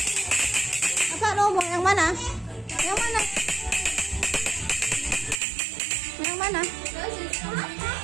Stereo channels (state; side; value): drops out; left; at 5.4 s